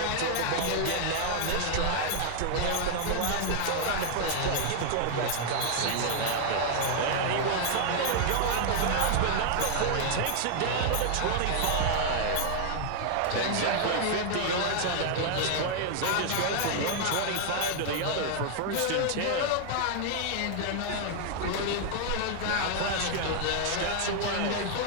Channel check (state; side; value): different; both; correlation 0.00